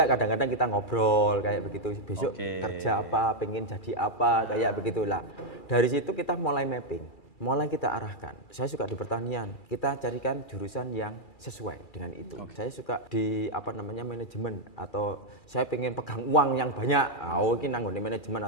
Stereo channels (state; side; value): late; right; 2.3 ms